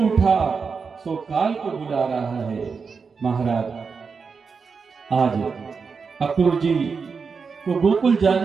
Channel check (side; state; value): left; quieter; 5.3 dB